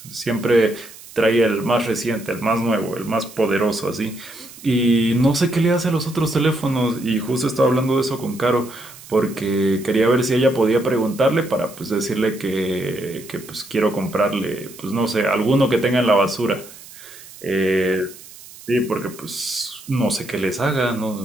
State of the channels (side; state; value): right; noise; hiss, 18 dB below the sound